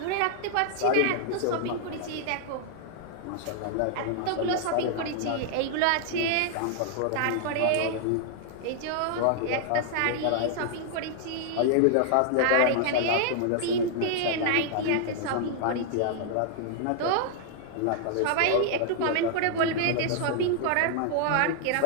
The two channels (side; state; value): both; different; correlation -0.01